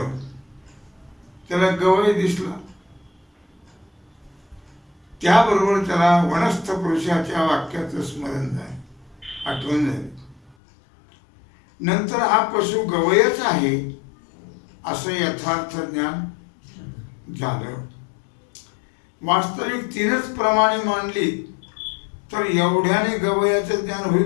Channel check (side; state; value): right; drops out; at 10.6 s